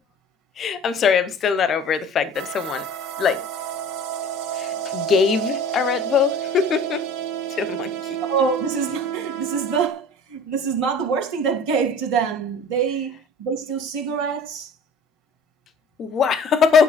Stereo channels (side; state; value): both; normal; correlation 0.44